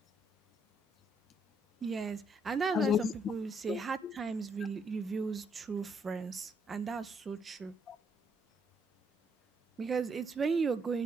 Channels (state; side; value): normal; both; correlation 0.73